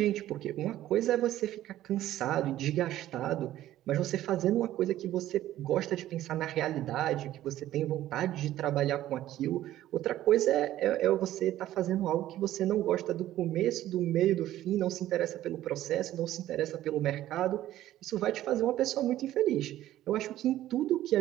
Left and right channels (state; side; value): quieter; left; 13.7 dB